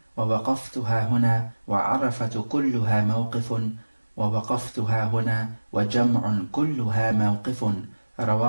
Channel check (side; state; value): both; inverted; correlation -1.00